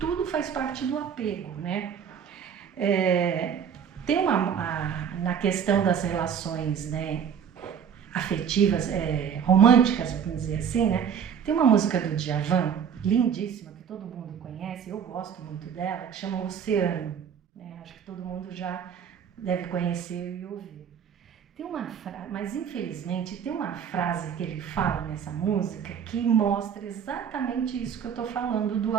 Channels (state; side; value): quieter; left; 7.8 dB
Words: faz parte do apego, né? Tem na questão das relações, né, afetivas, românticas, vamos dizer assim, né? Tem uma música do Djavan, lindíssima, que todo mundo conhece, eu gosto muito dela, que chama Oceano, né? Acho que todo mundo já deve conhecer e ouvir. Tem uma frase, mas infelizmente tem uma frase que ele fala nessa música que mostra exatamente isso que eu estou falando do